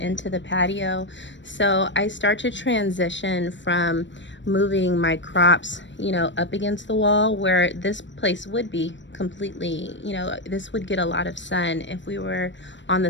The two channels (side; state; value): right; late; 0.53 ms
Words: the patio. So I start to transition from moving my crops, you know, up against the wall where this place would be completely, you know, this would get a lot of sun if we were on the